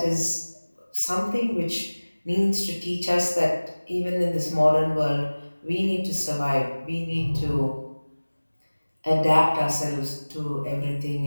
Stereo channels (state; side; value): inverted; both; correlation -1.00